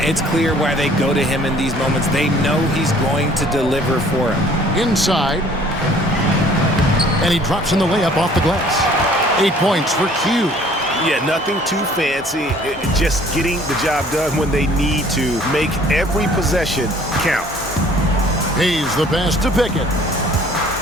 clear why they go to him in these moments. They know he's going to deliver for him. Inside. And he drops in the layup off the glass. 8 points for Q. Yeah, nothing too fancy. Just getting the job done when they need to. Make every possession count. Hayes the pass to Pickett.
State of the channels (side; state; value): both; normal; correlation 0.55